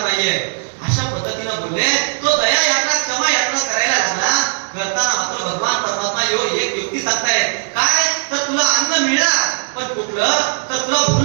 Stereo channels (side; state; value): left; silent; digital silence